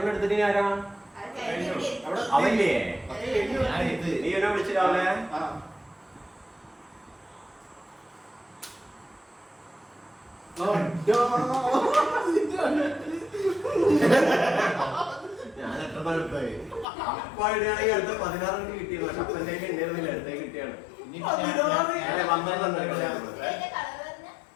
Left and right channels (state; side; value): drops out; right; at 16.9 s